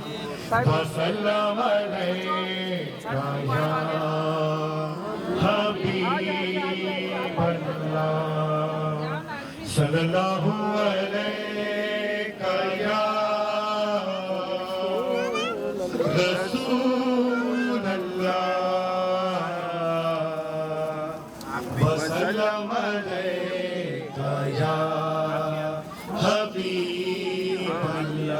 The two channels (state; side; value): identical; both; correlation 1.00